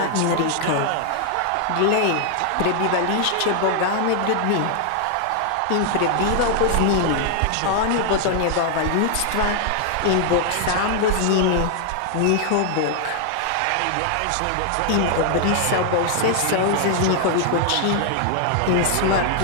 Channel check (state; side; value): different; both; correlation 0.00